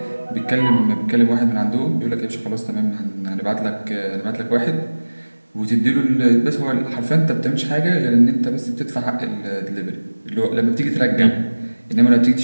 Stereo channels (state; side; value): inverted; both; correlation -1.00